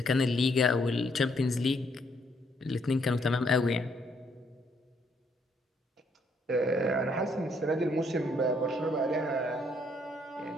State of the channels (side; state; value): both; normal; correlation 0.70